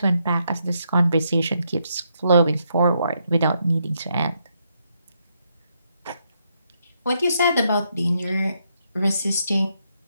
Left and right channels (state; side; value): inverted; both; correlation -0.78